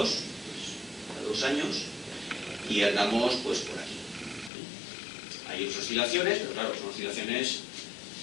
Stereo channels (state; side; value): drops out; right; at 4.5 s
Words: pues, a 2 años, y andamos pues por aquí. Hay oscilaciones, pero claro, son oscilaciones